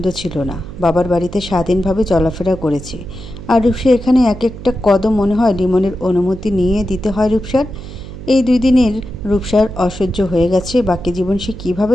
ছিল না। বাবার বাড়িতে স্বাধীনভাবে চলাফেরা করেছে, আর রূপসা এখানে এক একটা কদম মনে হয় লিমনের অনুমতি নিয়ে দিতে হয় রূপসার। এই 2 দিনের রূপসার অসহ্য হয়ে গেছে। বাকি জীবন সে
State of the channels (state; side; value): noise; right; hum, 13 dB below the sound